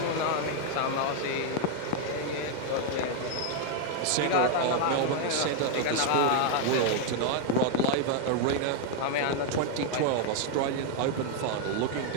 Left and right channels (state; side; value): different; both; correlation 0.00